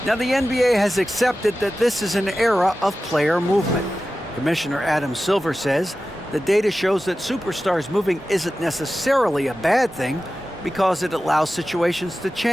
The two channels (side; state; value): both; normal; correlation 0.94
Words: Now, the NBA has accepted that this is an era of player movement. Commissioner Adam Silver says the data shows that superstars moving isn't necessarily a bad thing because it allows situations to